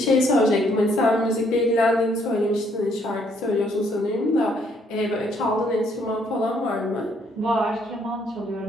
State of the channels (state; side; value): normal; both; correlation 0.68